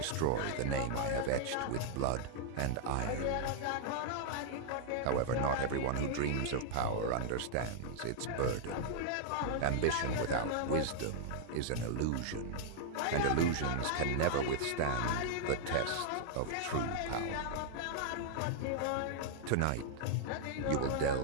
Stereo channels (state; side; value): different; both; correlation -0.01